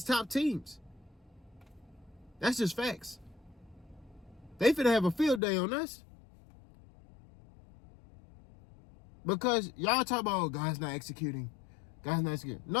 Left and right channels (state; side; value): drops out; right; at 5.4 s